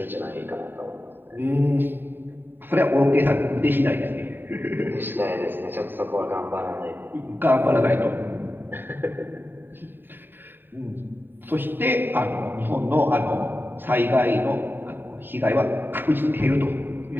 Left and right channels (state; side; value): late; left; 0.095 ms